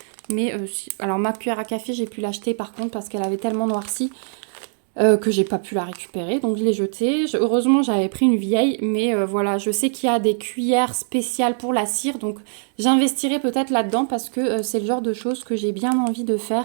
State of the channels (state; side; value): silent; left; 64 dB below the other